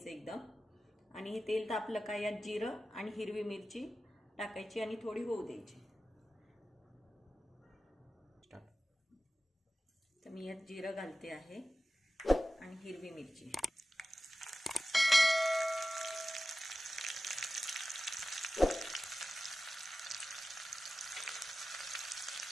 एकदम आणि हे तेल तापलं का यात जिरं आणि हिरवी मिरची टाकायची आणि थोडी होऊ द्यायची। तर मी यात जिरं घालते आहे आणि हिरवी मिरची,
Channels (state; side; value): normal; both; correlation 0.94